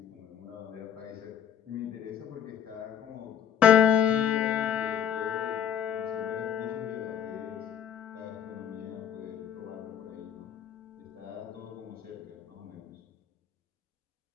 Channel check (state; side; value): quieter; right; 9.3 dB